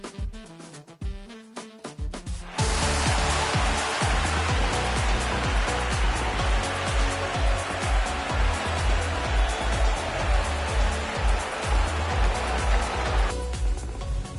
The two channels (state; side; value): identical; both; correlation 1.00